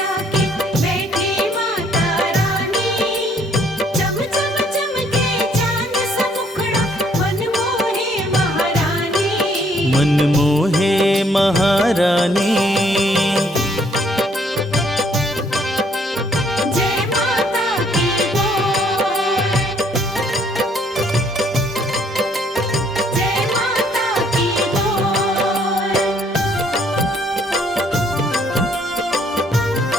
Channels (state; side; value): normal; both; correlation 0.65